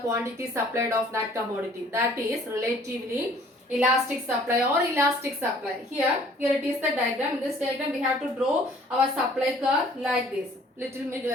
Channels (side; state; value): both; normal; correlation 0.55